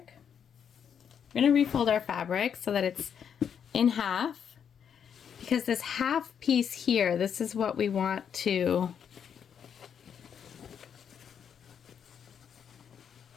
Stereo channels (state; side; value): quieter; right; 7.9 dB